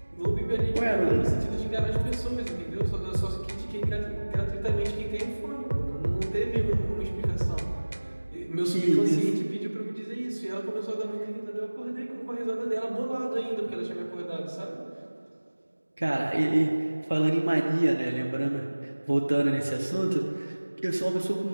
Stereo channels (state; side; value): inverted; both; correlation -1.00